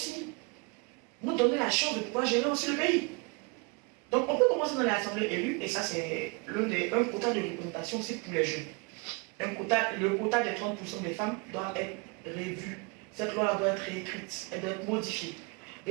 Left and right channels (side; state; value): left; quieter; 30.8 dB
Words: nous donner la chance de pouvoir gérer aussi le pays. Donc, on peut commencer dans l'assemblée élue, et ça, c'est un quota de représentation aussi pour les jeunes. Le quota des 30% des femmes doit être revu. Cette loi doit être réécrite, elle doit être modifiée.